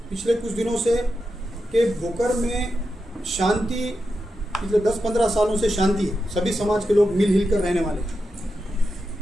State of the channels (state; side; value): normal; both; correlation 0.88